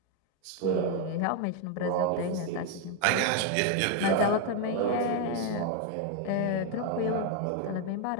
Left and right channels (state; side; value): different; both; correlation 0.01